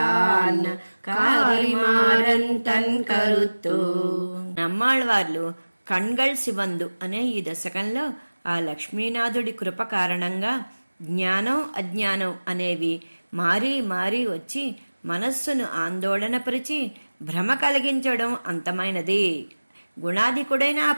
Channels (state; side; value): inverted; both; correlation -1.00